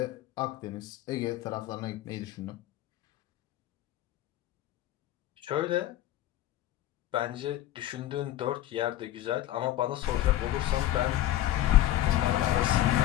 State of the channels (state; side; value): quieter; right; 13.9 dB